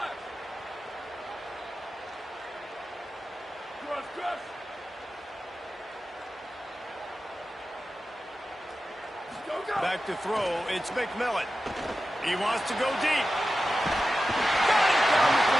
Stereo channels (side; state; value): both; normal; correlation 0.93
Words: Back to throw, it's McMillan. He wants to go deep. Got it down the